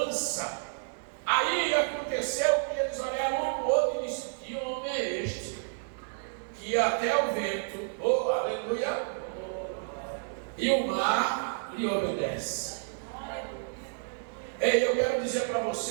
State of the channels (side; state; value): left; silent; digital silence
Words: Aí aconteceu que eles olharam um para o outro e disseram: que homem é este? Que até o vento, aleluia, e o mar lhe obedece. Ei, eu quero dizer para